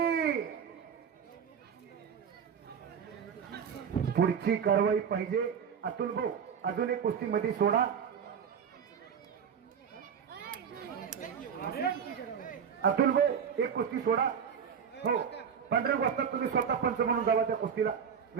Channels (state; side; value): quieter; left; 7.3 dB